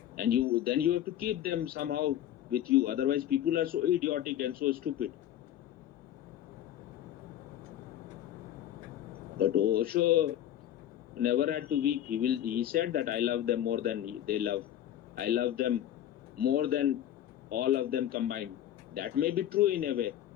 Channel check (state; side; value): quieter; right; 11.6 dB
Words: and then you have to keep them somehow with you. Otherwise, people are so idiotic and so stupid. But Osho never had to weep. He said that I love them more than they love. I love them more than all of them combined. That may be true in a way,